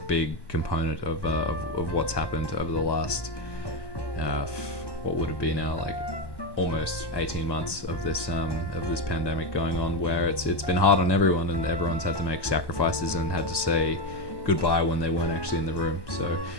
component of what's happened over the last what would it be now, like almost 18 months of this pandemic going on, where it's been hard on everyone, and everyone's had to make sacrifices and had to say goodbye when they weren't actually in the room. So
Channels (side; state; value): right; late; 1.2 ms